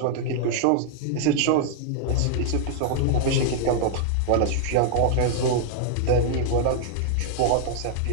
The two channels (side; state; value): both; different; correlation -0.01